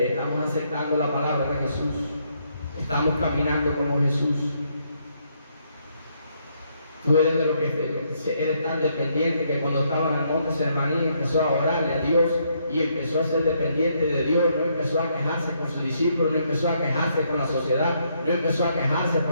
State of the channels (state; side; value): inverted; both; correlation -0.73